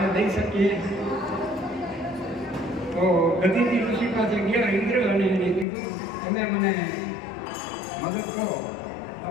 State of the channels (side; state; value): right; drops out; at 5.7 s